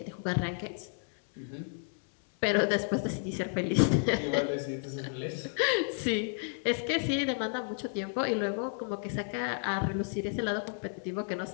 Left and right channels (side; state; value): right; silent; 56 dB below the other